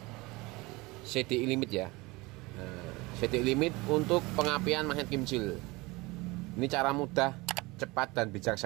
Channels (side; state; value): left; quieter; 23.1 dB